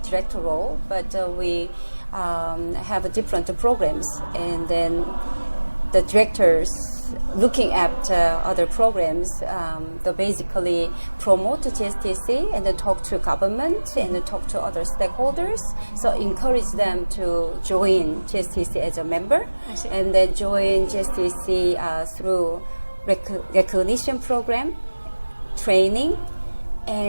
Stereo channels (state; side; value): inverted; both; correlation -1.00